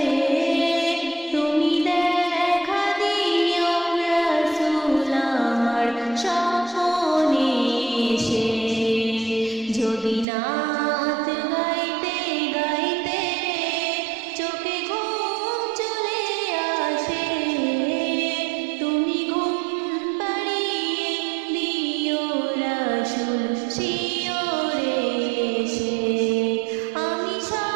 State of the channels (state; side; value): drops out; left; at 10.2 s